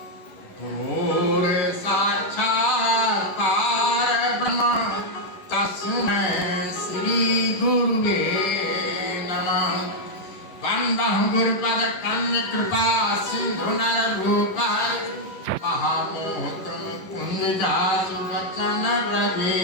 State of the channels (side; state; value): right; late; 11 ms